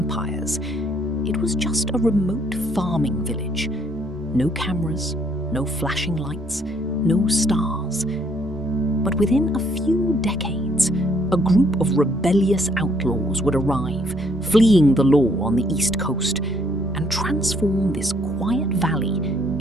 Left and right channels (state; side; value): noise; right; rumble, 24 dB below the sound